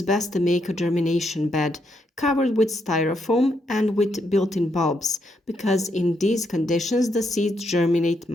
best to make a germination bed covered with styrofoam and with built-in bulbs, because in these conditions the seeds germinate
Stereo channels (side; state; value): both; normal; correlation 0.78